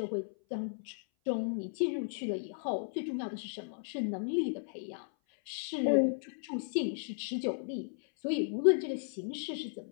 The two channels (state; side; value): silent; right; 55 dB below the other